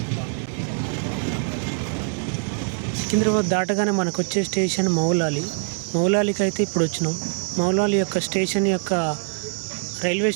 సికింద్రాబాద్ దాటగానే మనకు వచ్చే స్టేషన్ మౌలాలికి అయితే ఇప్పుడు వచ్చినాం. మౌలాలి యొక్క స్టేషన్ యొక్క రైల్వే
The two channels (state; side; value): silent; left; 63 dB below the other